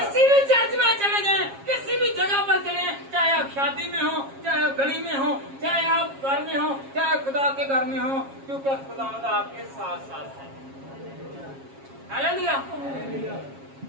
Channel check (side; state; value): left; late; 7.4 ms